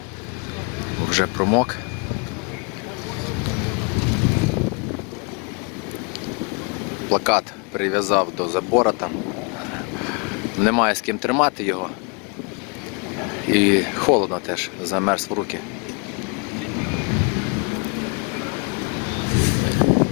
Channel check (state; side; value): quieter; right; 34.0 dB